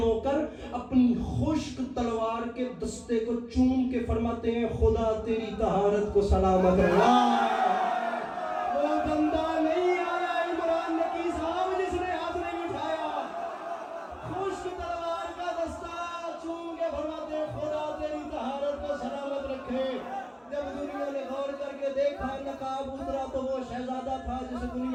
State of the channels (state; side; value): identical; both; correlation 1.00